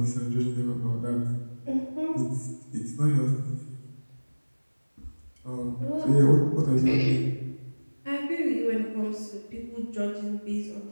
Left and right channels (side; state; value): both; inverted; correlation -1.00